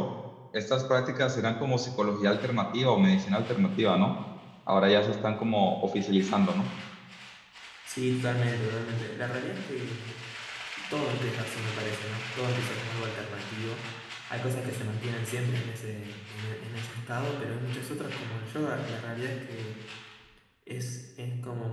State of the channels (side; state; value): both; identical; correlation 1.00